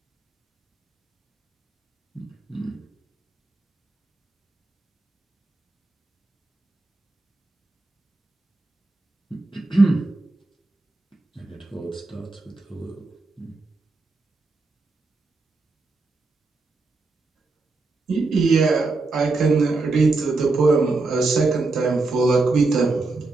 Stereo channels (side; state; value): left; quieter; 3.5 dB